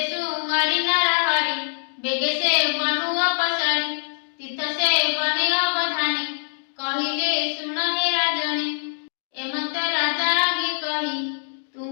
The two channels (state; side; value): silent; right; digital silence